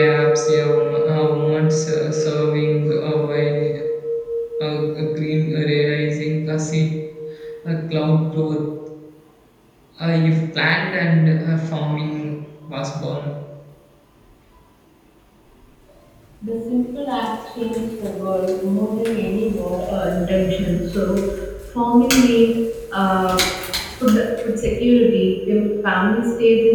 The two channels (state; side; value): identical; both; correlation 1.00